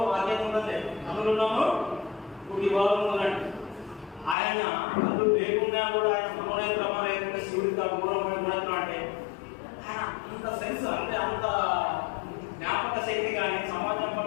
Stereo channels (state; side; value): drops out; right; at 4.4 s